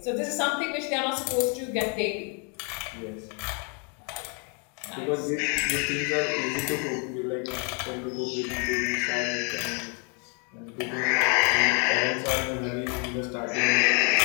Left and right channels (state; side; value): quieter; right; 37.0 dB